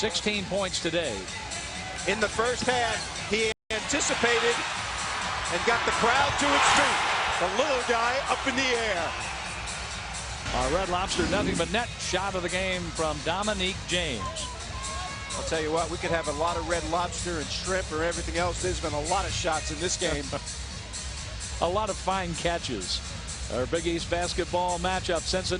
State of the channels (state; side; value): identical; both; correlation 1.00